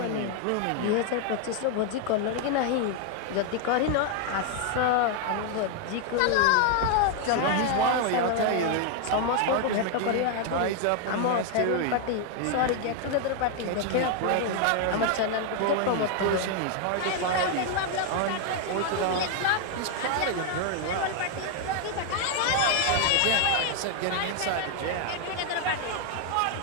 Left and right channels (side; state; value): both; different; correlation 0.01